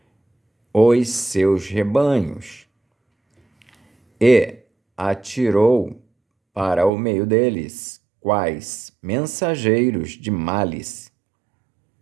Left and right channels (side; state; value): left; drops out; at 6.9 s